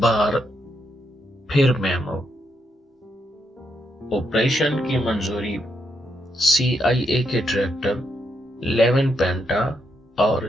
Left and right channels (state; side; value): normal; both; correlation 0.79